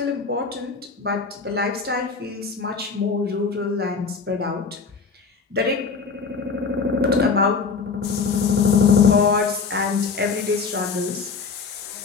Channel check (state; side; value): quieter; right; 5.0 dB